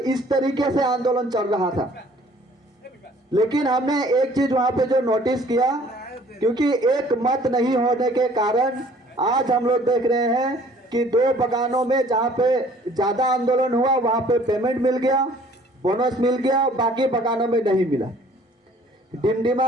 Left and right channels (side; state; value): both; normal; correlation 0.55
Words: तरीके से आंदोलन चल रहा था। लेकिन हमने एक चीज वहां पे जो नोटिस किया, क्योंकि एक मत नहीं होने के कारण आज हम लोग देख रहे हैं कि 2 बगानों में जहाँ पे ज्यादा आंदोलन हुआ वहां पे पेमेंट मिल गया, बोनस मिल गया, बाकी बगानों में नहीं मिला।